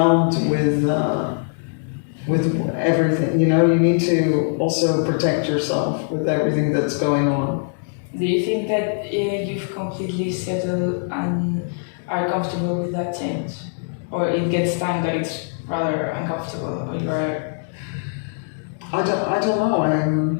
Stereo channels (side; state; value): right; silent; digital silence